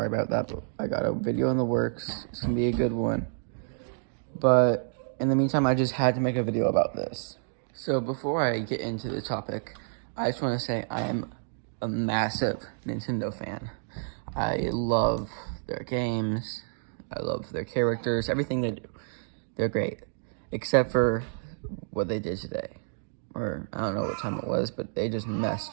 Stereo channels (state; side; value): silent; left; digital silence